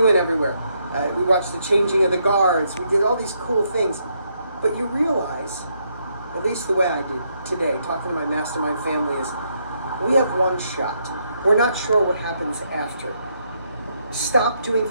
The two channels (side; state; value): both; inverted; correlation -0.76